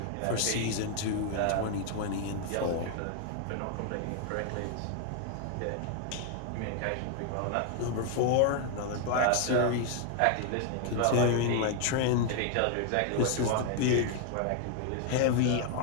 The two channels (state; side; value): different; both; correlation 0.00